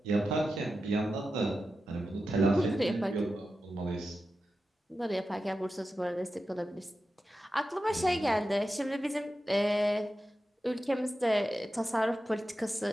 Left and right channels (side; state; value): both; normal; correlation 0.91